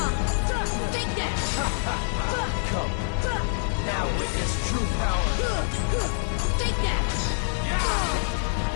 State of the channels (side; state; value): right; silent; digital silence